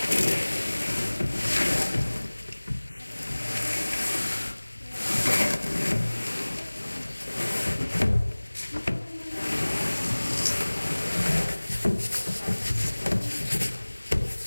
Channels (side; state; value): both; inverted; correlation -1.00